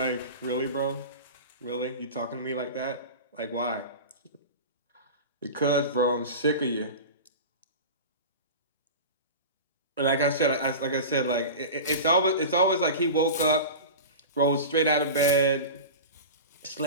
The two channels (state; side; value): inverted; both; correlation -0.31